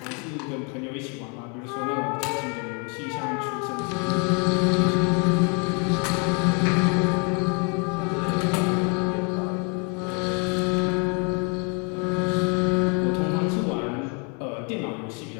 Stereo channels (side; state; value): right; quieter; 35.7 dB